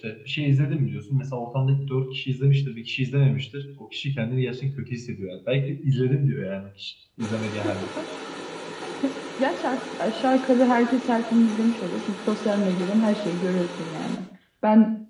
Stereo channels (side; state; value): both; identical; correlation 1.00